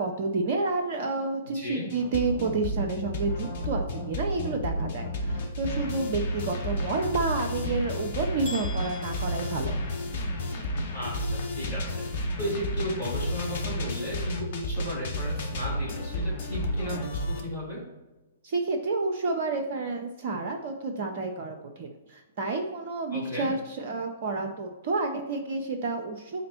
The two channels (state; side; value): inverted; both; correlation -0.51